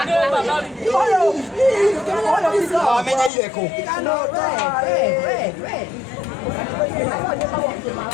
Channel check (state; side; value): drops out; right; at 3.3 s